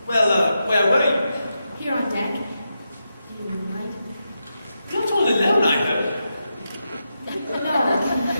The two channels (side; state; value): both; inverted; correlation -0.87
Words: Well, where were you? Here on deck. You mind? You're not all alone, I hope.